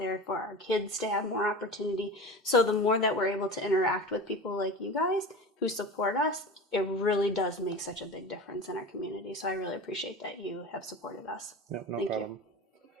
for our kids to have more opportunity. So the more that we're able to interact with people like you guys who support us, it really does make such a big difference in our community. So I really appreciate that you have supported us. No Thank problem. You.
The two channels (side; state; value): both; normal; correlation 0.31